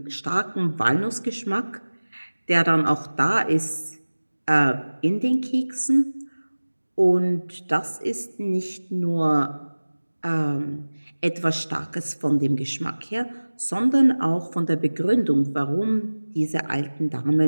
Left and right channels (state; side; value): inverted; both; correlation -1.00